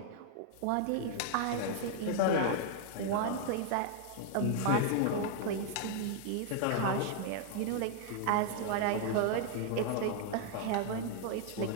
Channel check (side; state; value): both; different; correlation -0.01